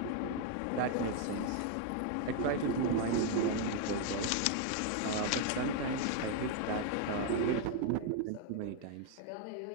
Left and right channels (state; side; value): different; both; correlation 0.00